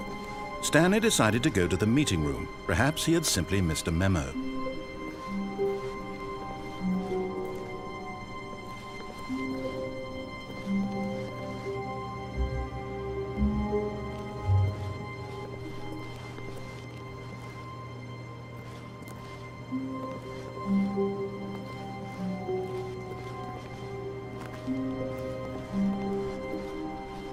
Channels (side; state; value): both; identical; correlation 1.00